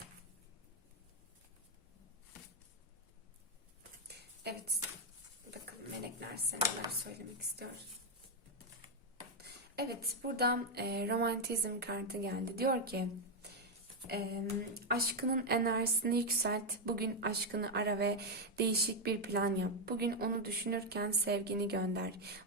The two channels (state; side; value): normal; both; correlation 0.02